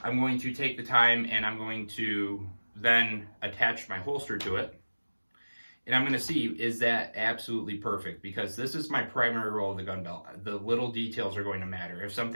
I'm going to take the time and I'm going to then attached my holster to it. And I'm going to see, is that absolutely perfect? Because this is my primary roll of the gun belt. The little details are going to matter. If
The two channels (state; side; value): inverted; both; correlation -1.00